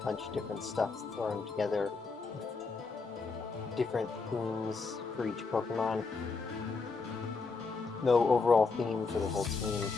of different stuff thrown together. Different themes for each Pokemon. No overall theme for the whole team.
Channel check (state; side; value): quieter; right; 4.3 dB